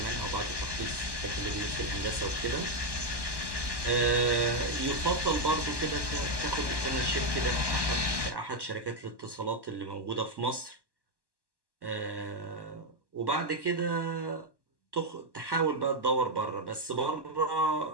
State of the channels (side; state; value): left; late; 1.2 ms